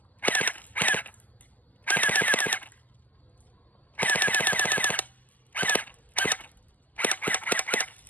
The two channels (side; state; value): right; late; 0.081 ms